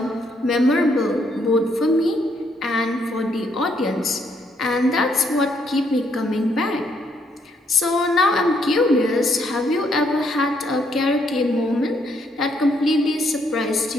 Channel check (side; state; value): both; normal; correlation 0.72